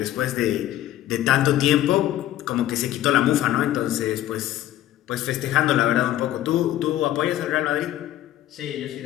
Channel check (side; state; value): right; quieter; 13.4 dB